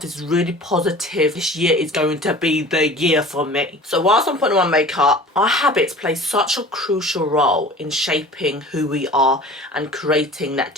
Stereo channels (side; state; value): both; normal; correlation 0.42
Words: really positive, this year is going to be the year for me. So whilst I'm putting on my makeup, our habits play such a crucial role in shaping who we are and creating that